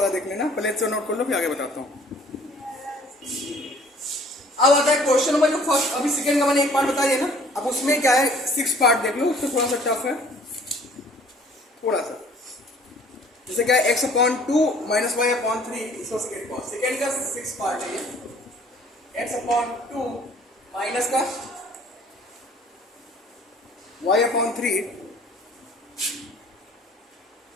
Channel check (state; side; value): normal; both; correlation 0.55